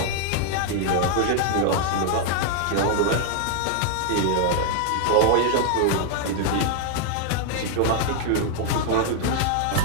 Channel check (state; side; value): different; both; correlation 0.00